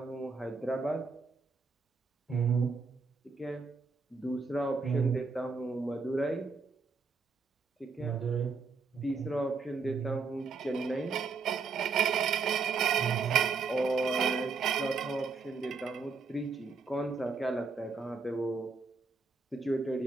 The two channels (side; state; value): left; quieter; 4.6 dB